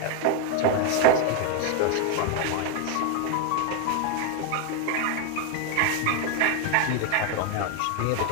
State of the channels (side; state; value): both; different; correlation 0.01